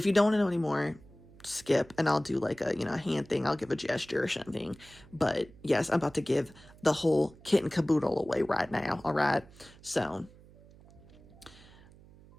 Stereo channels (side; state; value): right; noise; hum, 23 dB below the sound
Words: you don't want to know anymore, skip, and I'll do like a hand thing. I'll give a gesture or something. But yes, I'm about to give the whole kit and caboodle away right now. All right. So